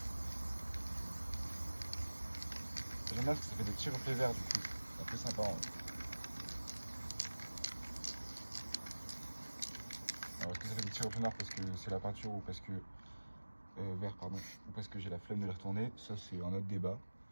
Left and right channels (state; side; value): inverted; both; correlation -1.00